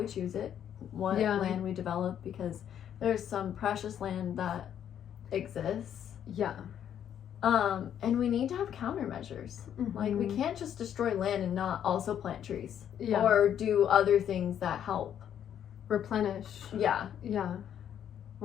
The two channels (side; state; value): right; quieter; 9.6 dB